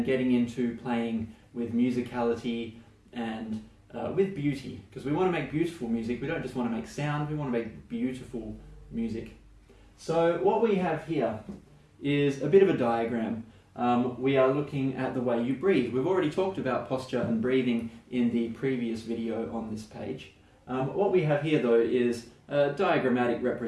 getting into playing with musicality and with beauty, because we want to make beautiful music. We don't just want to make sound, we want to make beautiful music. So what we have here is a bit of a diagram. We are looking at the way you breathe. We've already talked about posture and breathing in the previous video on this page. What we have here though is a diagrammatic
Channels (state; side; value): identical; both; correlation 1.00